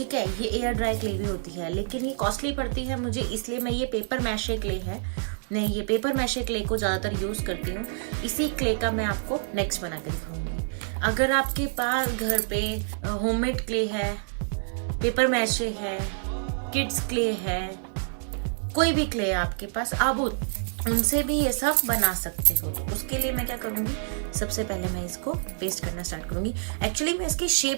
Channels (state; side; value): silent; left; 60 dB below the other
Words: है। ये एयर ड्राई क्ले भी होती है, लेकिन ये कॉस्टली पड़ती है मुझे, इसलिए मैं ये पेपर मैशे क्ले है, मैं ये पेपर मैशे क्ले को ज़्यादातर यूज़ करती हूँ। इसी क्ले का मैं आपको नेक्स्ट बना के दिखाऊंगी। अगर आपके पास घर पे होममेड क्ले है, पेपर मैशे है, किड्स क्ले है, कोई भी क्ले है आपके पास, आप उनसे भी ये सब बना सकते हो। तो उसके लिए मैं क्या करूंगी, सबसे पहले मैं इसको पेस्ट करना स्टार्ट करूंगी। एक्चुअली मैं इसकी